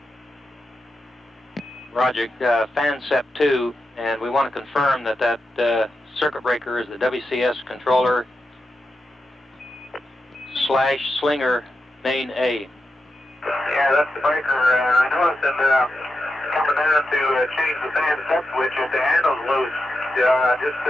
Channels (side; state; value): both; normal; correlation 0.88